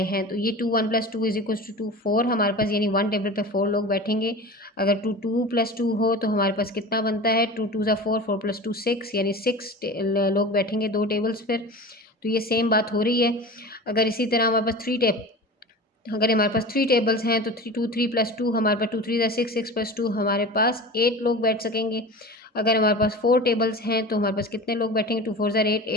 हैं, तो ये 2 1 प्लस 2 इज इक्वल्स टू 2 4 हमारे पास, यानी 1 टेबल पे 4 लोग बैठेंगे। अगर 2 2 प्लस 2 हो तो हमारे पास कितना बनता है, 2 2 ज़ा 4, 4 प्लस 2 6, यानी 6 लोग बैठेंगे 2 टेबल्स पर। तो ये सेम बात हो रही है। अगर इसी तरह हमारे पास अगर हमारे पास 3 टेबल्स हैं तो 2 3 प्लस 2 हमारे पास 2 3 ज़ा 6, 6 प्लस 2 हमारे पास 8 लोग बैठ सकेंगे। अगर हमारे पास 4 टेबल्स हैं तो हमारे पास कितने लोग बैठेंगे, 2 4 ज़ा 8,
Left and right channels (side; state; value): both; normal; correlation 0.33